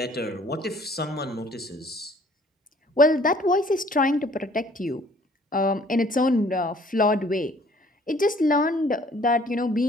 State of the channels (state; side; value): normal; both; correlation 0.57